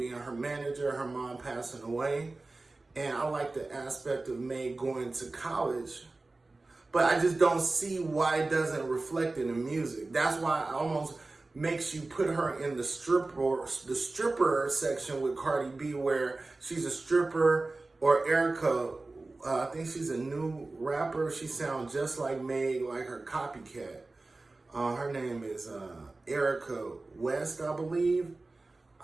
her manager, her mom passing away. And I like the aspect of Meg going to college. But I just don't see why it doesn't reflect in the music. That's why it almost makes you put her in the stripper section with Cardi B, where she's a stripper, or Erica. I think she's a new rapper. She sounds just like Meg, like her copycat. Her name is Erica West, I believe.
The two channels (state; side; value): quieter; left; 3.3 dB